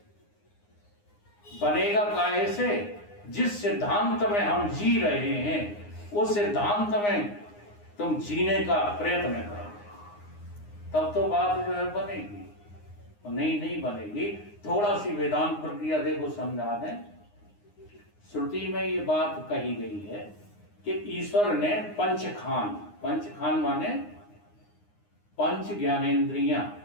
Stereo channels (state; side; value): late; right; 9.7 ms